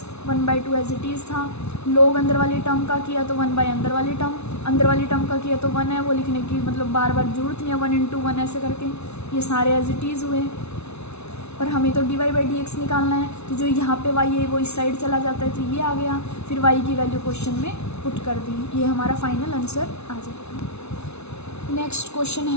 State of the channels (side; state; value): right; late; 0.81 ms